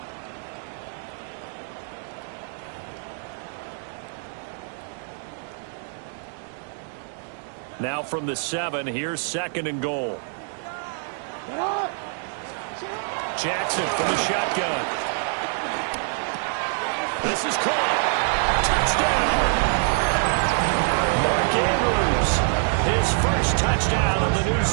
Now from the 7, here's 2nd and goal. Jackson from the shotgun. This is caught. Touchdown. Mark Andrews, his first touchdown of the new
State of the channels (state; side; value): silent; left; 56 dB below the other